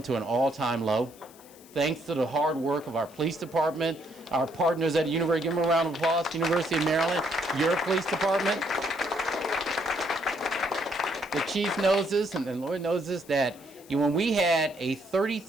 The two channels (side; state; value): left; noise; hiss, 23 dB below the sound